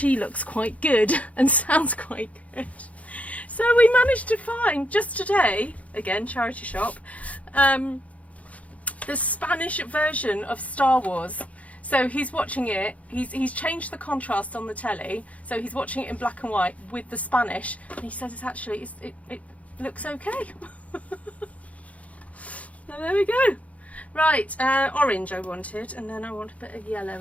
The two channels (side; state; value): right; late; 0.067 ms